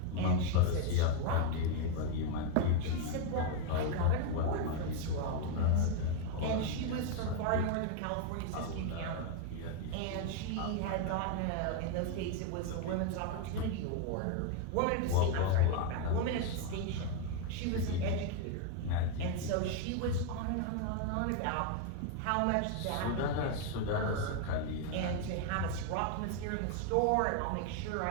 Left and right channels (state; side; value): different; both; correlation 0.01